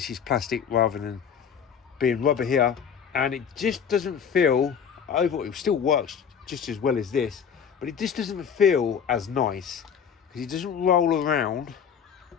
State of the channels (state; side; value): quieter; right; 7.4 dB